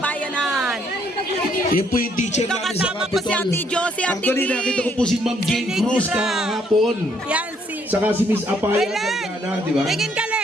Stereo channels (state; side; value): normal; both; correlation 0.68